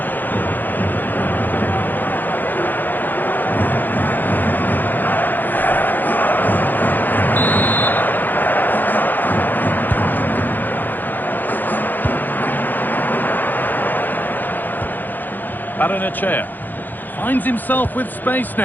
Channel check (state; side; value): late; right; 0.087 ms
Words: Chair finds himself with space